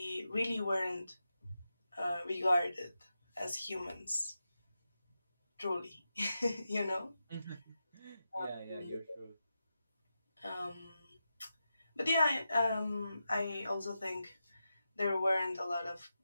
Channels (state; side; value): inverted; both; correlation -0.89